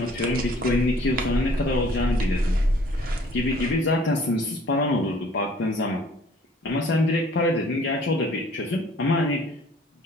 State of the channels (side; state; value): both; normal; correlation 0.54